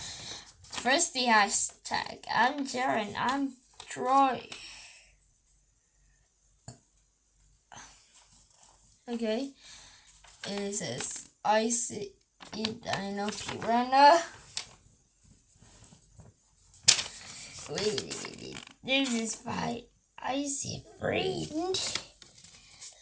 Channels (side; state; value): both; identical; correlation 1.00